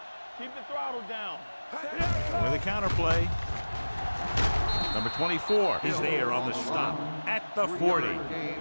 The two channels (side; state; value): both; inverted; correlation -1.00